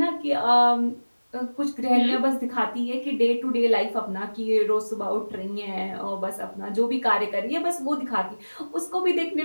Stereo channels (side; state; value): both; inverted; correlation -1.00